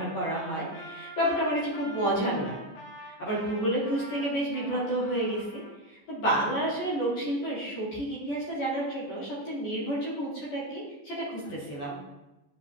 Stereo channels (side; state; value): right; late; 14 ms